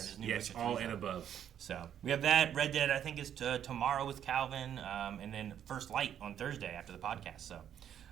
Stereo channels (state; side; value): quieter; left; 9.7 dB